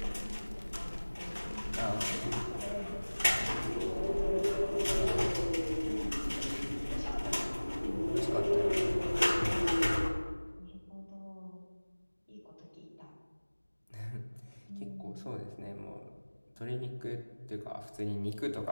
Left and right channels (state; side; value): inverted; both; correlation -1.00